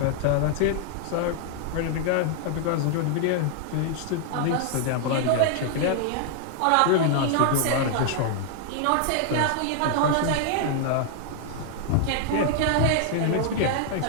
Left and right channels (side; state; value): both; different; correlation 0.00